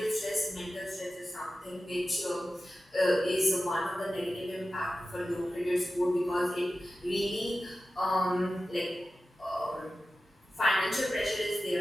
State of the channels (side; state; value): both; normal; correlation 0.94